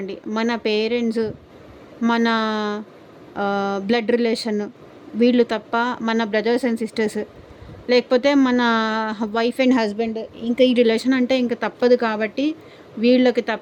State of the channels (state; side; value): identical; both; correlation 1.00